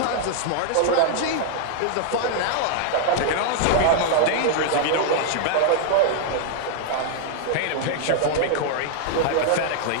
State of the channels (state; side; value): different; both; correlation -0.01